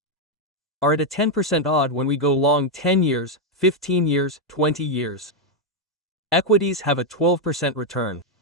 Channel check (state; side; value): normal; both; correlation 0.02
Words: are at a 10% odd when we go long 10 years, 15 years, 20 years. Equities have a 12% return.